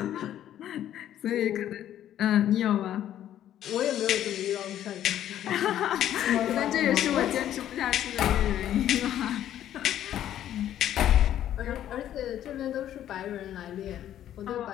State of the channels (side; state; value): right; quieter; 11.5 dB